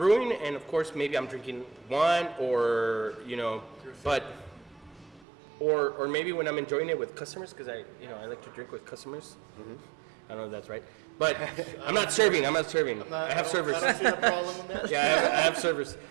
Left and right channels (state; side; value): drops out; left; at 5.2 s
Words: and of course maybe I'm drinking one or you know, but or maybe when I'm enjoying it with customers because I like to drink with customers. I don't know if that's right, but I'm not serving. I have servers. I don't see the problem with that. Yeah, I have servers.